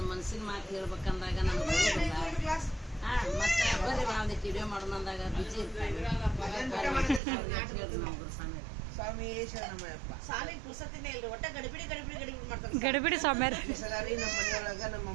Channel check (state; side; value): drops out; left; at 7.2 s